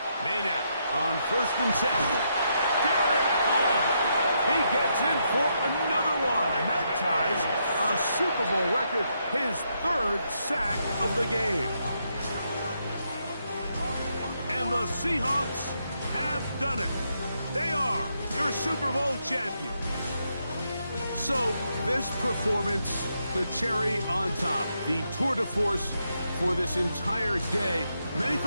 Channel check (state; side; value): inverted; both; correlation -0.79